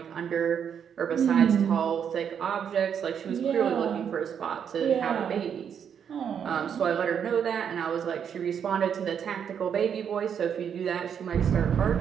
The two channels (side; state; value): left; quieter; 7.9 dB